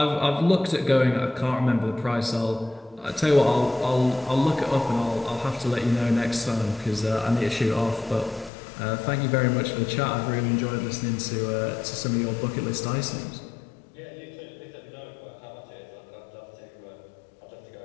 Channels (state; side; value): drops out; right; at 8.5 s